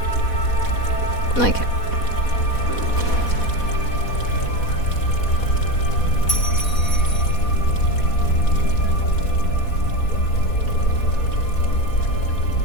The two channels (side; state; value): right; late; 4.1 ms